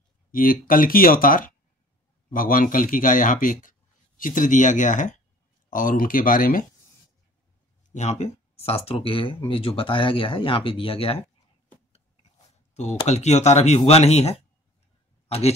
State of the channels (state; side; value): normal; both; correlation 0.50